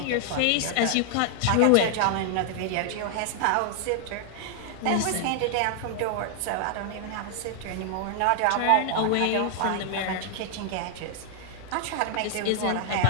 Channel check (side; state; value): both; different; correlation 0.00